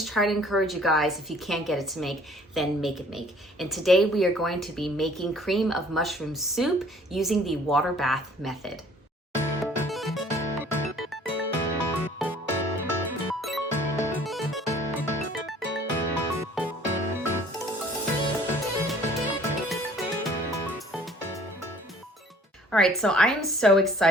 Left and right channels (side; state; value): both; normal; correlation 0.54